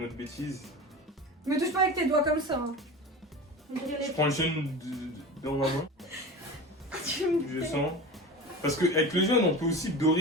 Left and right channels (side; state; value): both; normal; correlation 0.31